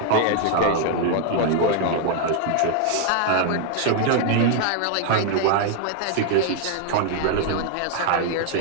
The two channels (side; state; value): both; different; correlation 0.00